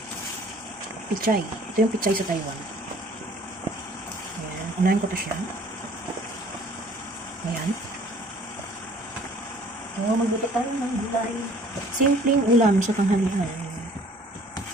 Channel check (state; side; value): normal; both; correlation 0.54